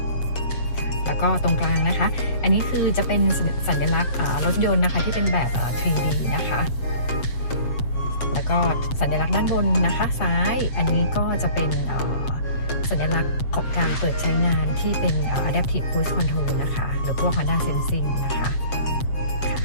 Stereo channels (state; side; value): late; right; 8.0 ms